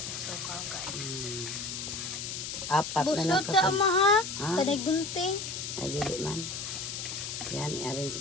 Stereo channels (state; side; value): noise; left; hiss, 5 dB below the sound